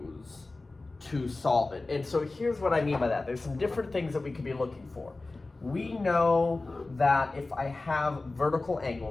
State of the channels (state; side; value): quieter; right; 3.3 dB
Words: to solve it. And so here's what I mean by that. There's some different things that we could be looking for. We know that if I have vertical